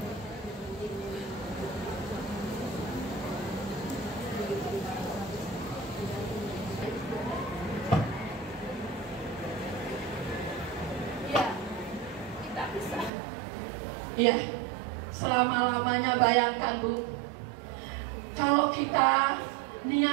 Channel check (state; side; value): drops out; left; at 13.1 s